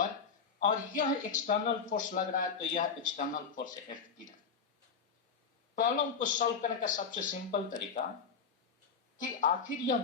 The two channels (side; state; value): right; quieter; 5.9 dB